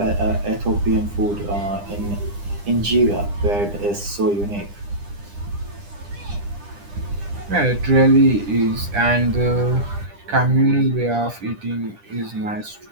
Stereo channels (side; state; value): left; late; 9.9 ms